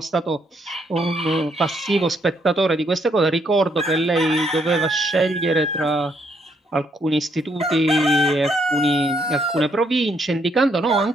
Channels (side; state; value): both; normal; correlation 0.72